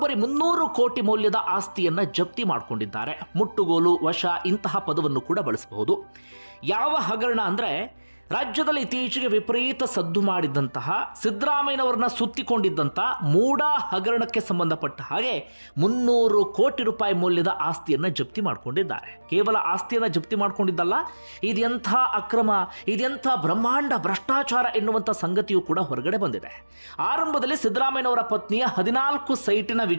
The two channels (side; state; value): both; inverted; correlation -1.00